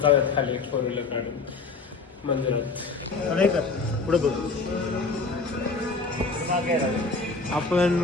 जाऊयात खाली 4 व्हीलर काढून मंदिरात. पुढे बघ.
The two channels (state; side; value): quieter; right; 4.0 dB